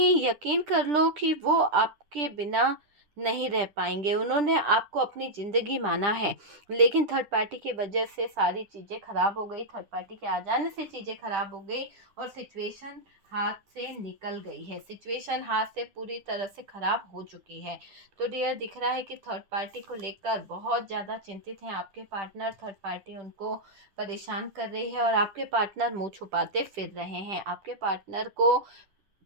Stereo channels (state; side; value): late; left; 10 ms